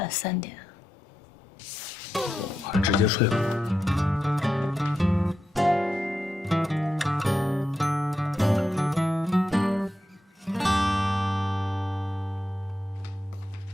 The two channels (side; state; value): both; normal; correlation 0.87